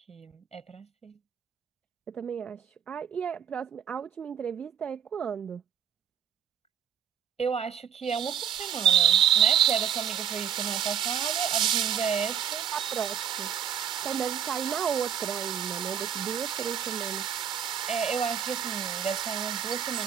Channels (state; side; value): quieter; left; 8.6 dB